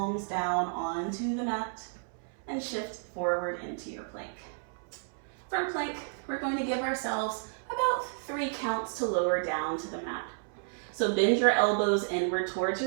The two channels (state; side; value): silent; left; 57 dB below the other